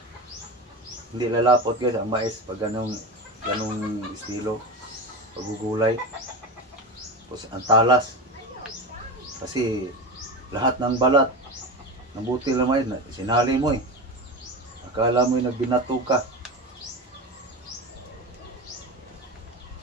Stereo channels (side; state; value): both; normal; correlation 0.23